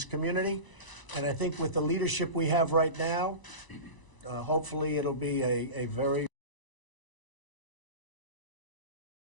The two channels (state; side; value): late; right; 1.0 ms